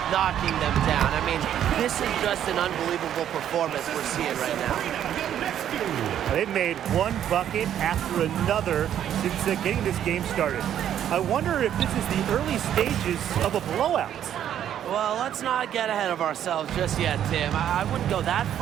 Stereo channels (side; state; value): left; quieter; 10.3 dB